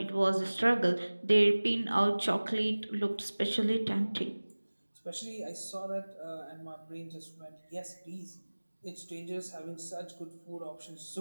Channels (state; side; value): inverted; both; correlation -1.00